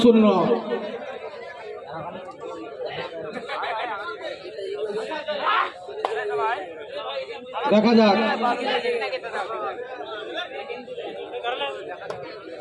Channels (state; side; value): identical; both; correlation 1.00